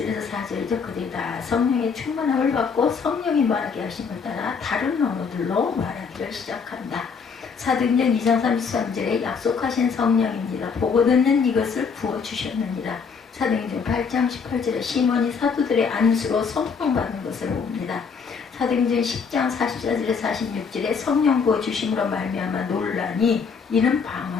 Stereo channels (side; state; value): right; quieter; 5.7 dB